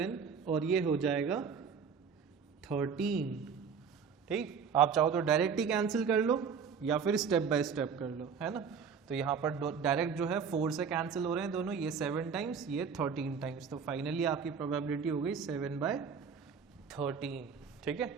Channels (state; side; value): quieter; left; 6.3 dB